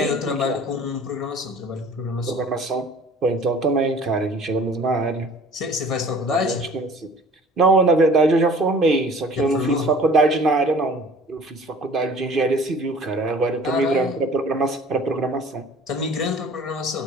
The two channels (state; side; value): normal; both; correlation 0.48